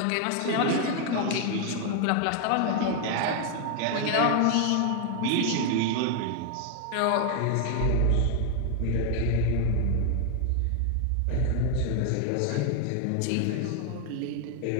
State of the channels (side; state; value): both; different; correlation 0.00